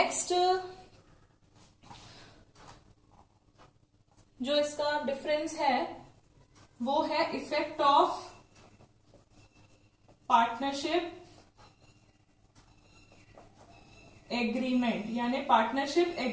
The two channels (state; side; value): identical; both; correlation 1.00